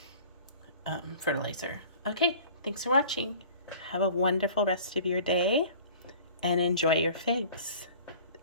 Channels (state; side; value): inverted; both; correlation -0.46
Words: fertilizer. Okay, thanks for watching. Have a wonderful rest of your day and enjoy your figs,